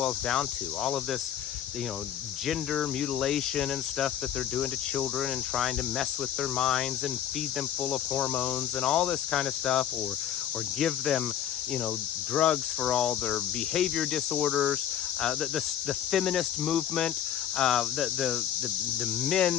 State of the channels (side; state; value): right; quieter; 10.3 dB